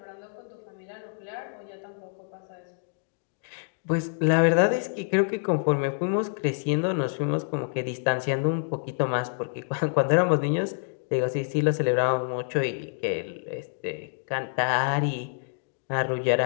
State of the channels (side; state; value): right; silent; 60 dB below the other